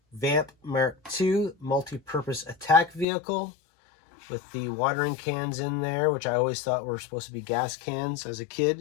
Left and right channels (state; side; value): drops out; right; at 3.1 s